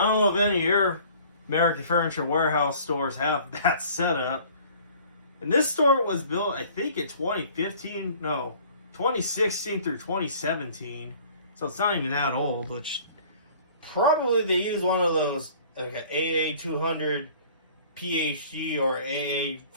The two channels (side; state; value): both; inverted; correlation -0.51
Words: don't know if any of your American Furniture Warehouse stores have that set up. And this store was built, I think, in 2016 through 2017. So it's not even that old, which probably they use one of those, like an AA200 PhD or